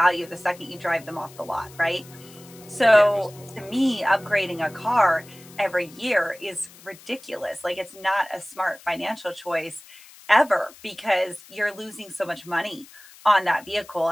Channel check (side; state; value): left; noise; hiss, 22 dB below the sound